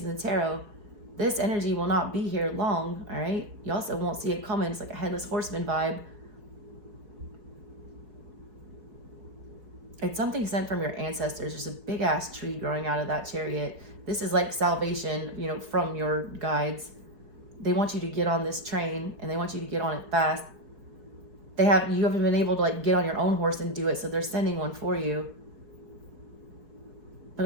in the tarot. This energy will not be here long, all right? You also won't see it coming. It's like a headless horseman vibe. It's something sent from your ancestors. There's a big ass tree growing out of that Chariot. This is like salvation, you know, from your guides. They want you to get on this train, and they want you to get on it fast. you haven't been able to like get on your own horse and do it, so they're sending one for you. But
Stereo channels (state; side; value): late; left; 4.6 ms